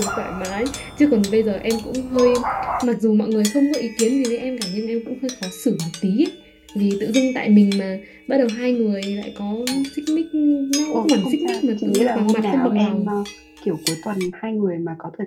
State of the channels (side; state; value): both; identical; correlation 1.00